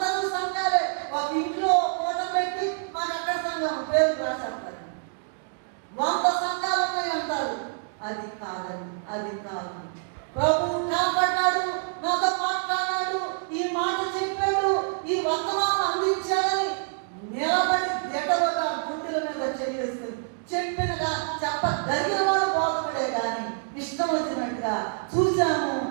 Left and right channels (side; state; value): left; silent; digital silence